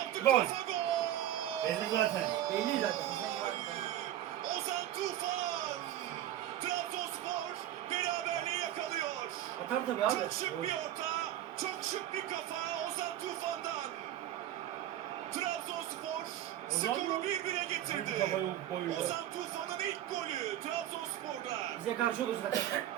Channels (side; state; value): left; quieter; 12.3 dB